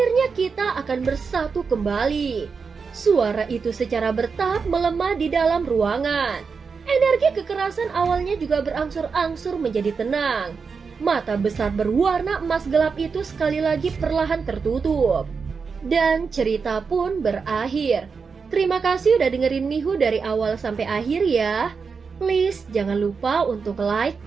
kita akan bersatu kembali. Suara itu secara bertahap melemah di dalam ruangan. Energi kekerasan awalnya juga berangsur-angsur menjadi tenang. Mata besar berwarna emas gelap itu sekali lagi perlahan tertutup. Dan cerita pun berakhir. Terima kasih udah dengerin Mihu dari awal sampai akhir ya. Please jangan lupa untuk like,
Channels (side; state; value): left; quieter; 5.3 dB